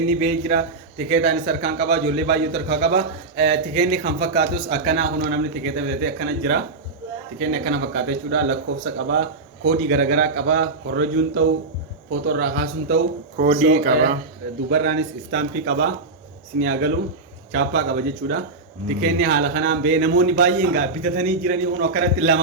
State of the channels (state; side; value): quieter; left; 3.6 dB